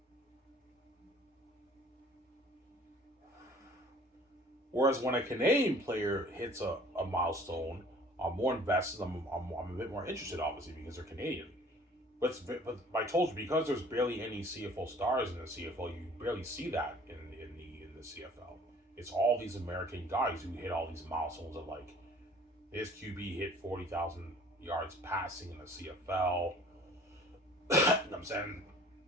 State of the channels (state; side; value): normal; both; correlation 0.51